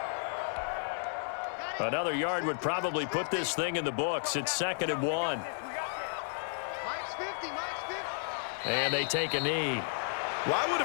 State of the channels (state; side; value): silent; right; 56 dB below the other